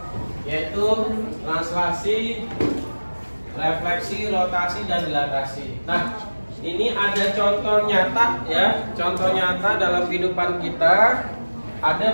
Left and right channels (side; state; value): both; inverted; correlation -1.00